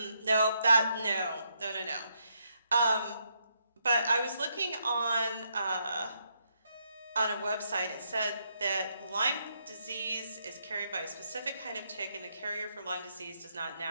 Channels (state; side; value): inverted; both; correlation -0.77